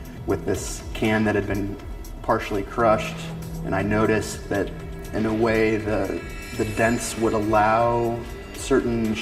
with this can that had been partially crushed, and I noticed that in a way the dents would allow certain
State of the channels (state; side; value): identical; both; correlation 1.00